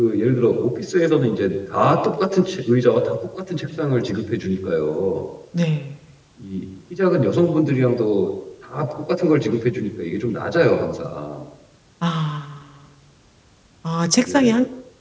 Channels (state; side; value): identical; both; correlation 1.00